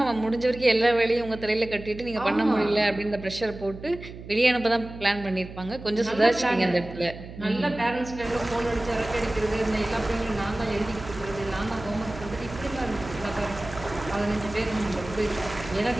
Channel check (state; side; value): noise; right; hum, 14 dB below the sound